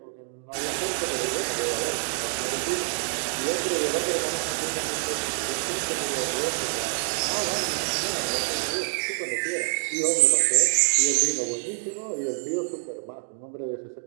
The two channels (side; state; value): left; silent; digital silence